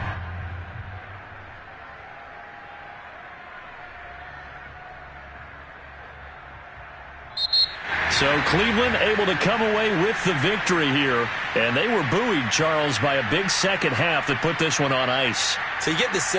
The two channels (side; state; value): both; identical; correlation 1.00